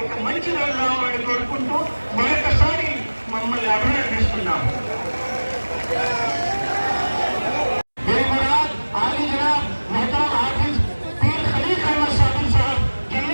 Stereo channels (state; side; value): inverted; both; correlation -1.00